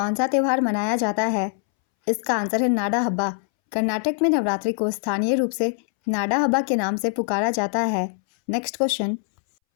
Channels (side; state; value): right; silent; 63 dB below the other